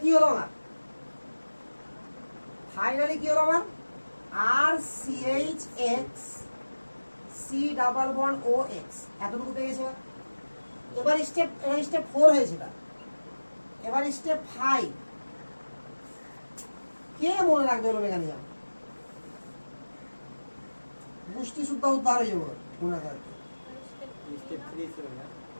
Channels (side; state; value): both; inverted; correlation -1.00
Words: কি হলো আমার? ফাইনালি কি হলো আমার? RCH X C double bond O X এতটুকু পেয়ে গেছে। এবার স্টেপ 4 হয়েছে। এবার স্টেপ 5 কে মনে রাখবে? হলো মেকানিজম পুষ্টি শুদ্ধ উদ্ধার হয়ে যাবে মনে রাখবে।